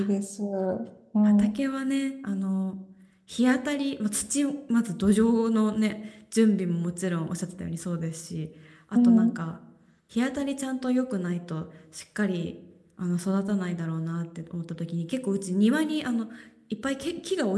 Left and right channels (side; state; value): both; identical; correlation 1.00